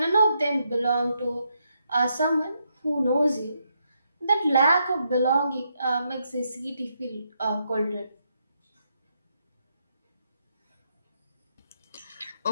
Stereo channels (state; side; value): inverted; both; correlation -0.79